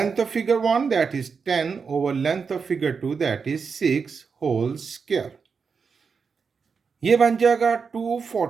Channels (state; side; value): quieter; left; 5.5 dB